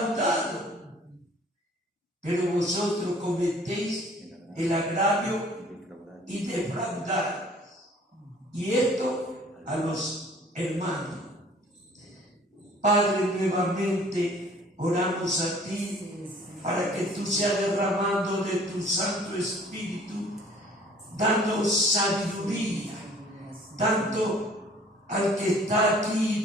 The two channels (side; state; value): both; normal; correlation 0.53